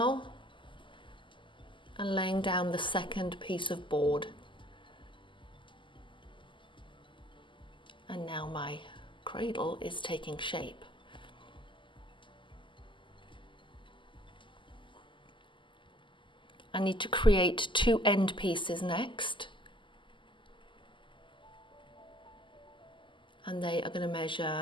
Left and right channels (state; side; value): late; right; 0.24 ms